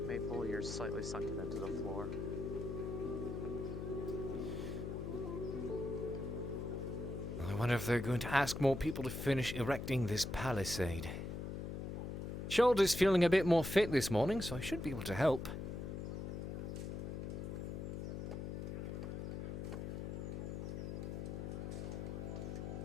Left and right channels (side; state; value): left; noise; hum, 5 dB below the sound